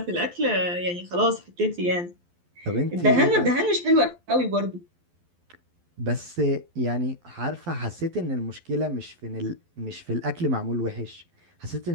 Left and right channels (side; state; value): left; late; 12 ms